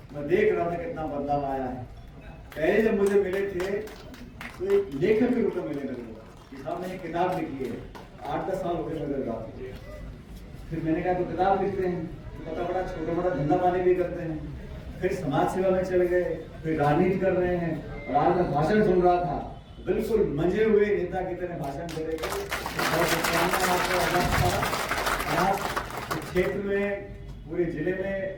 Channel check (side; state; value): both; identical; correlation 1.00